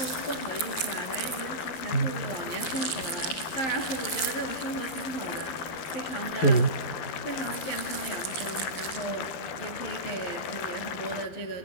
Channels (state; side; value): late; right; 12 ms